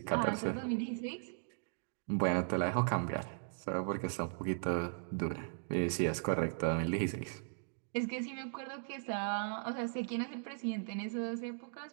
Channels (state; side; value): silent; left; digital silence